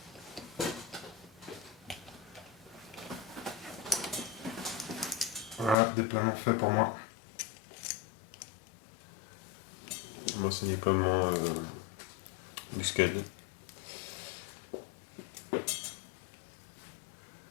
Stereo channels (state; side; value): drops out; right; at 5.8 s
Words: Voilà, déploiement fait pour moi. Moi, c'est déploiement muscade. Un